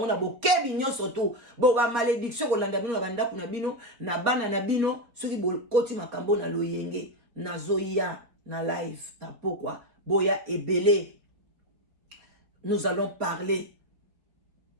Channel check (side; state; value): left; late; 4.3 ms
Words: bokebi nyonso to bo ba malédiction kolanda bino na bandako na bino na bana na bino soki bokoti makambo na loyenge nazoya na live na pourquoi boya ebele. Nous allons parler